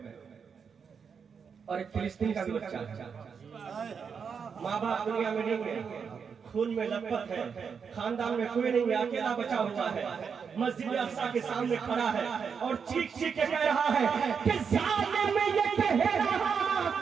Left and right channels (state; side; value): quieter; left; 6.3 dB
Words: और एक फिलिस्तीन का भी बच्चा, माँ बाप दुनिया में नहीं है, खून में लथपथ है, खानदान में कोई नहीं है, अकेला बचा हुआ है, मस्जिद अक्सा के सामने खड़ा है और चीख चीख के कह रहा है कि जालिम ये कह रहा